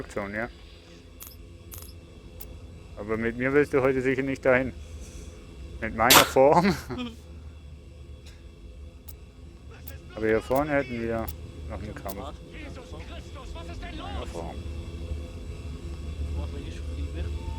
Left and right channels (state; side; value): identical; both; correlation 1.00